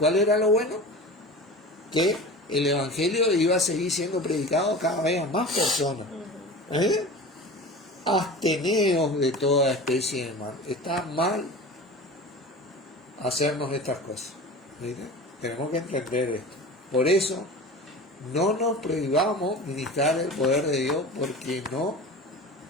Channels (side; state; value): both; normal; correlation 0.34